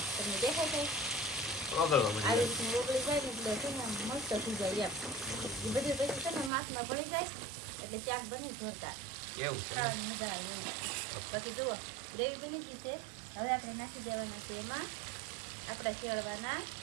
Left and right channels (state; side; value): drops out; left; at 6.5 s